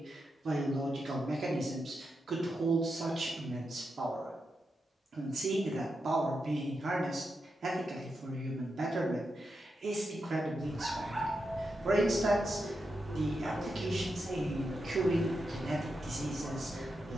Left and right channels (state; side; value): normal; both; correlation 0.87